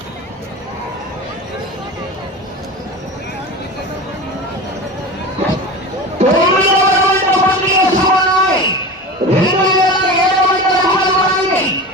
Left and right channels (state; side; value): normal; both; correlation 0.29